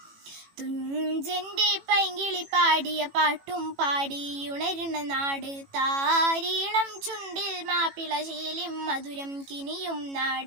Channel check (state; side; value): late; left; 18 ms